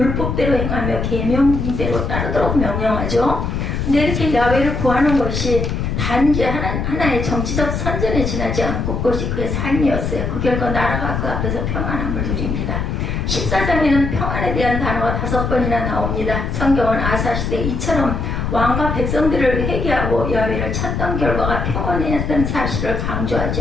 행하며 계명대로 따르도록 명령하죠. 근데 이렇게 야훼를 구하는 것이 단지 하나의 정치적 선전에 지나지 않고 그것이 그의 삶이었어요. 그 결과 나라가 그 앞에서 평안함을 누립니다. 14장에는 평안에 대한 단어가 5번이나 나옵니다. 성경은 아사 시대 이처럼 왕과 백성들을 회개하고 야훼를 찾던 결과가 평안이었던 사실을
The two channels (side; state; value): left; noise; rumble, 2 dB below the sound